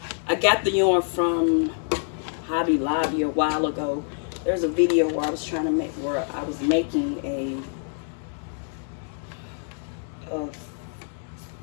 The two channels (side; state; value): right; silent; 61 dB below the other